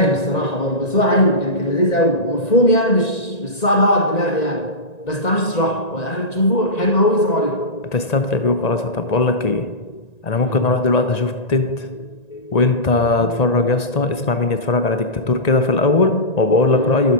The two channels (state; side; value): late; right; 1.9 ms